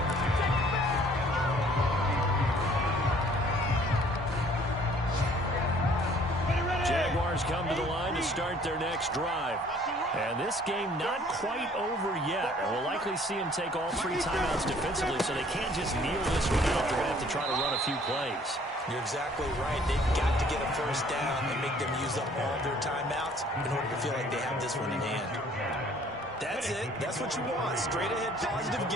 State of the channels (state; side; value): normal; both; correlation 0.57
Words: Jaguars come to the line to start their next drive. And this game not quite over yet. And we'll likely see them take all 3 timeouts defensively, so they can't just kneel this one out. They're going to have to try to run a few plays. You're exactly right. They've got to get a first down and make them use up all their timeouts in order to feel like they have this one in hand. That's it. That's what you want. Straight ahead, positive